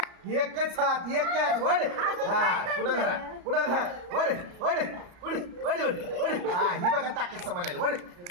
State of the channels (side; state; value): left; late; 34 ms